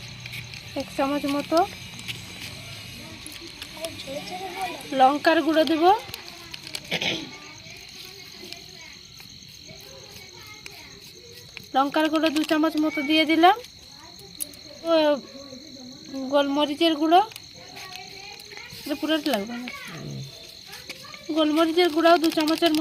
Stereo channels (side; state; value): both; identical; correlation 1.00